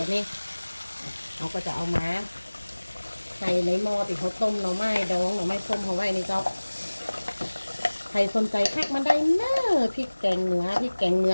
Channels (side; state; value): both; inverted; correlation -1.00